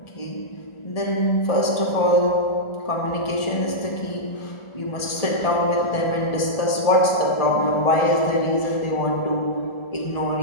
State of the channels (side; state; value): right; late; 1.4 ms